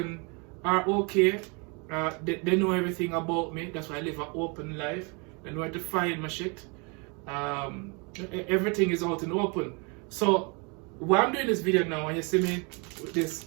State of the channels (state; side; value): quieter; left; 32.2 dB